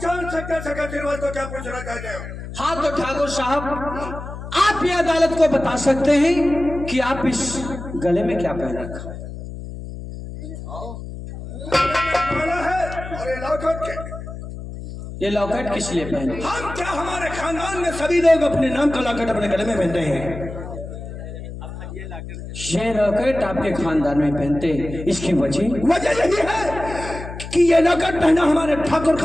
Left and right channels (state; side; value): noise; left; hum, 10 dB below the sound